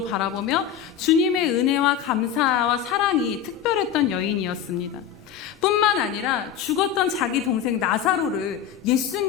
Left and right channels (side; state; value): right; quieter; 9.0 dB